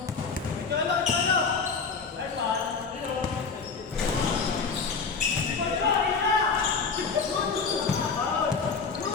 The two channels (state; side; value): quieter; right; 5.1 dB